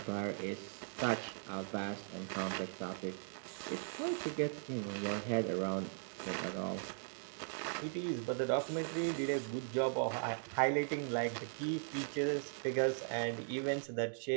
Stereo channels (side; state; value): left; silent; digital silence